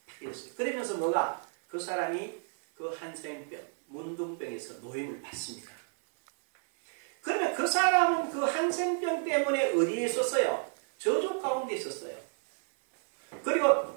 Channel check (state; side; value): silent; left; 56 dB below the other